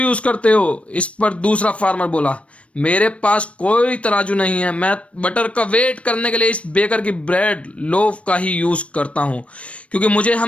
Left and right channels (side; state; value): right; late; 0.063 ms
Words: करते हो। इस पर दूसरा फार्मर बोला, मेरे पास कोई तराजू नहीं है, मैं बटर का वेट करने के लिए इस बेकर की ब्रेड लोफ का ही यूज करता हूं, क्योंकि मुझे